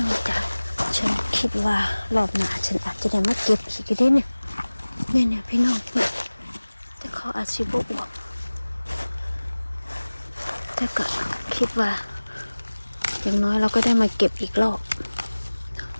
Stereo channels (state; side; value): inverted; both; correlation -1.00